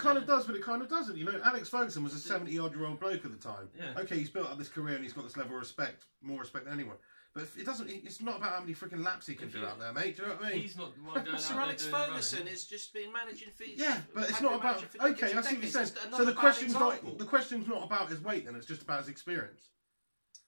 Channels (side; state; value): both; inverted; correlation -1.00